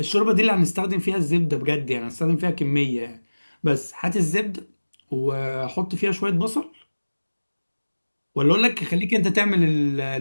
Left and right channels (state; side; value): inverted; both; correlation -1.00